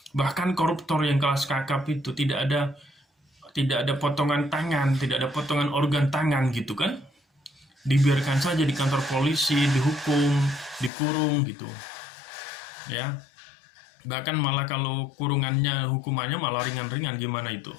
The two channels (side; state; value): right; drops out; at 10.9 s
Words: bahkan koruptor yang kelas kakap itu tidak ada potongan tangan, tidak ada potongan organ tangan gitu kan? Dibiarkan saja di kantor polisi, dihukum, dikurung gitu, ya. Bahkan malah kalau hukumannya malah ringan-ringan, gimana itu?